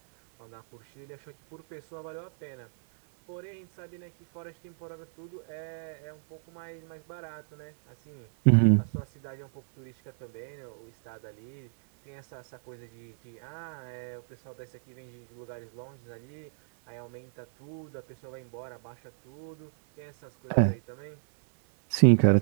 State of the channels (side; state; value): left; silent; 57 dB below the other